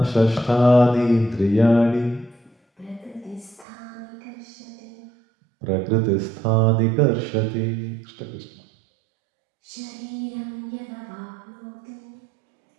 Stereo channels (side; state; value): left; drops out; at 3.7 s